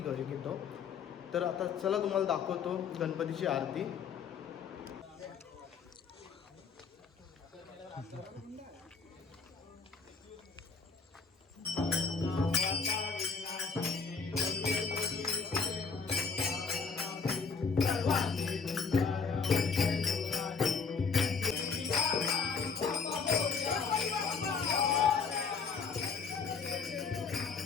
तर आता चला तुम्हाला दाखवतो गणपतीची आरती।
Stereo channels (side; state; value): right; quieter; 5.3 dB